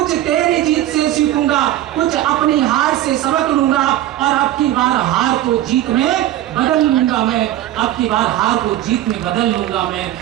तेरी जीत से सीखूंगा, कुछ अपनी हार से सबक लूंगा, और अब की बार हार को जीत में बदल लूंगा मैं, अब की बार हार को जीत में बदल लूंगा मैं।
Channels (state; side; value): quieter; left; 13.7 dB